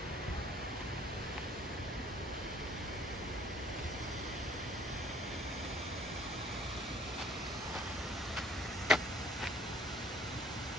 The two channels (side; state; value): both; normal; correlation 0.55